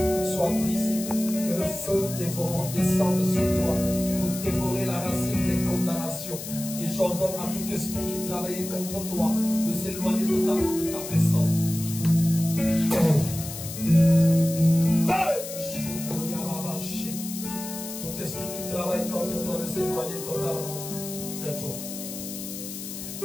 soit brisée. Que le feu dévorant descende sur toi pour dévorer la racine des condamnations. Et j'ordonne à tout esprit qui travaillait contre toi de s'éloigner totalement de ta personne. Tout esprit qui travaille contre toi de s'éloigner totalement de toi.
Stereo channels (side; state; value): left; noise; hiss, 9 dB below the sound